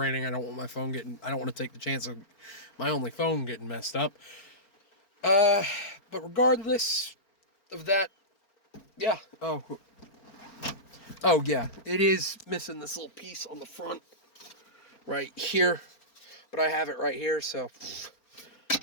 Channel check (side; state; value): right; late; 4.4 ms